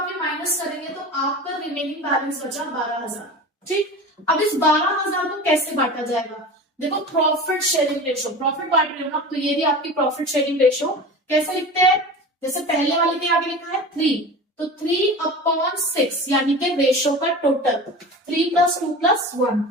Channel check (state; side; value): normal; both; correlation 0.33